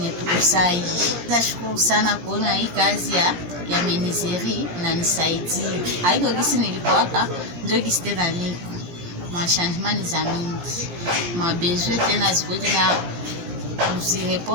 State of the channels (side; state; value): left; late; 17 ms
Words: tukusai. Nashukuru sana kuona hii kazi ya menuiserie inanisaidia. Haiko gisi nilipowaka ndio gisi tena niko machangement za mingi mabesoin tena ziko tena